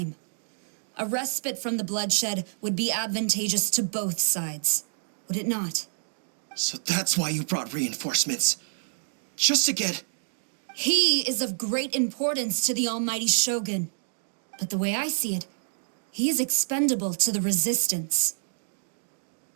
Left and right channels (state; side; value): silent; left; digital silence